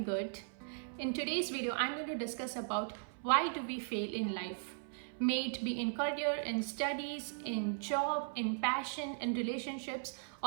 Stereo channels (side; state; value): left; silent; 53 dB below the other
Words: good. In today's video, I'm going to discuss about why do we fail in life. May it be in career, in studies, in job, in passion, in relationships,